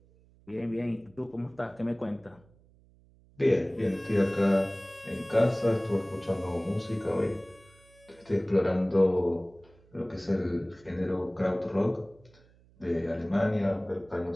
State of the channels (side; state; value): right; noise; hum, 29 dB below the sound